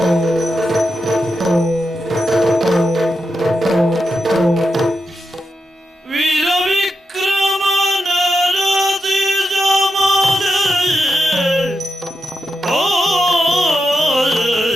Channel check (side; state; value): both; normal; correlation 0.86